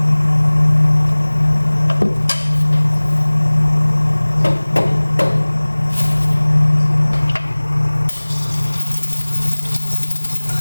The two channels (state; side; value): inverted; both; correlation -1.00